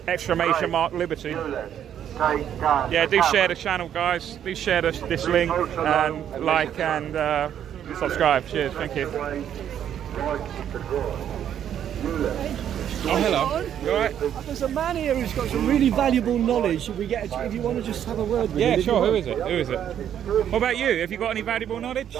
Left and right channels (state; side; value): quieter; left; 9.8 dB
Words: exclamation mark Liberty. Yeah, do share the channel, guys. Do share this link and like and subscribe. Cheers. Thank you. Oh, hello. You alright? There's a man here who's got some really valuable knowledge. If you want to just have a word with him. Yeah, sure. Who is it? Who is it? What about you? Have you got any valuable knowledge?